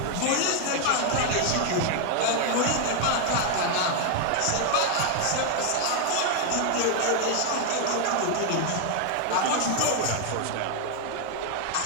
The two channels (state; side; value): different; both; correlation 0.00